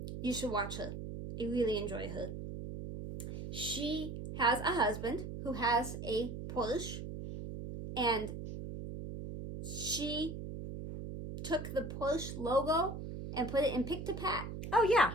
You should watch her. I really enjoy her. She has a husband who has a Porsche, and she took the Porsche logo and put it in Pick-to-Pat. Oh, yeah.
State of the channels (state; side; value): noise; right; hum, 7 dB below the sound